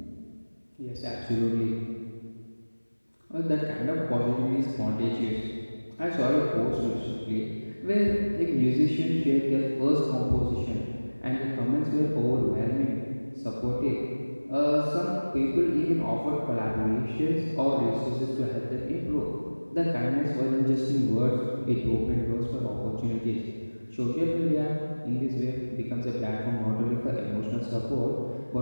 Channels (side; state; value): both; inverted; correlation -1.00